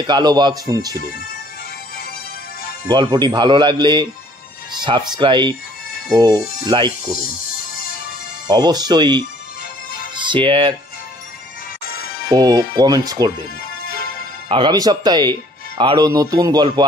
কালো বাঘ শুনছিলেন। গল্পটি ভালো লাগলে সাবস্ক্রাইব ও লাইক করুন। অবশ্যই শেয়ার ও কমেন্টস করবেন। আগামী সপ্তাহে আরও নতুন গল্প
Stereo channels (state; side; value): normal; both; correlation 0.57